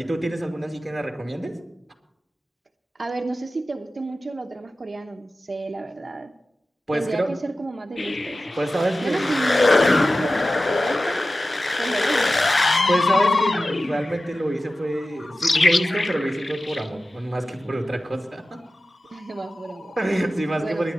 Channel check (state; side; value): normal; both; correlation 0.94